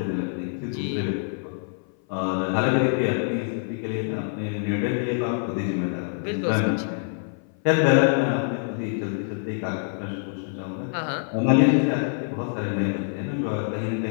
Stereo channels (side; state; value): right; silent; 58 dB below the other